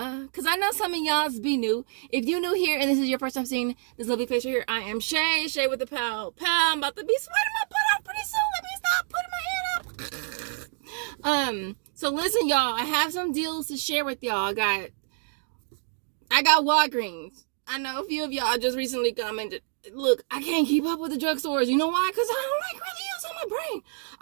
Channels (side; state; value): left; silent; 59 dB below the other